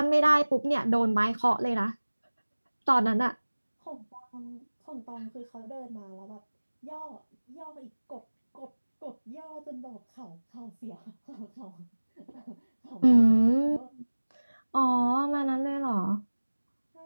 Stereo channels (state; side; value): inverted; both; correlation -1.00